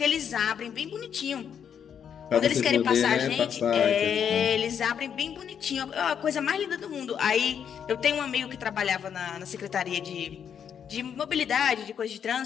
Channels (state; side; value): quieter; right; 8.0 dB